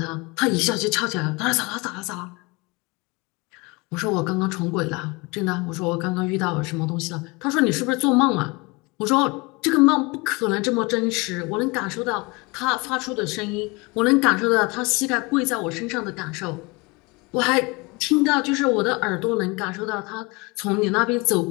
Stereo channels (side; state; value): right; quieter; 26.3 dB